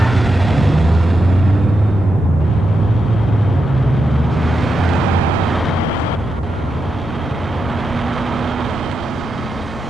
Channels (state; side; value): normal; both; correlation 0.86